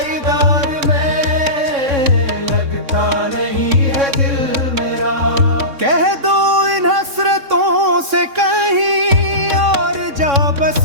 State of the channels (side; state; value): left; late; 3.6 ms